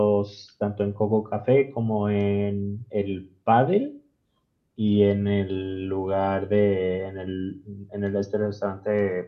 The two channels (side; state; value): both; identical; correlation 1.00